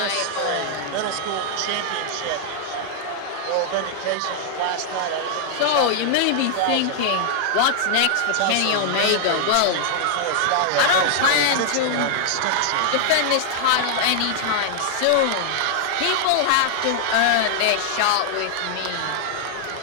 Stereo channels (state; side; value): different; both; correlation -0.01